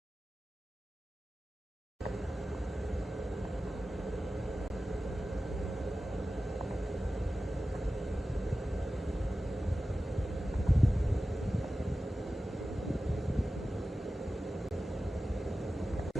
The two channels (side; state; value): both; normal; correlation 0.94